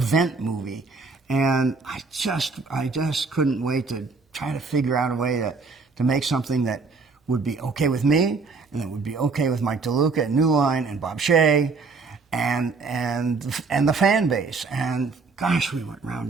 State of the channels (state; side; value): quieter; left; 4.3 dB